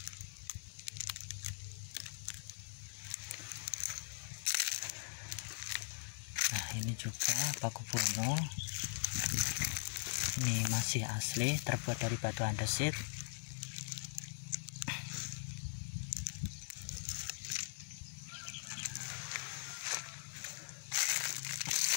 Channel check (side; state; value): right; silent; digital silence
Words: Nah ini juga Paku Buwono, ini masih asli, terbuat dari batu andesit.